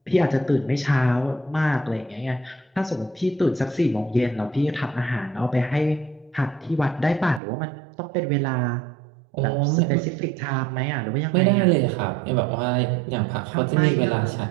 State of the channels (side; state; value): left; drops out; at 7.4 s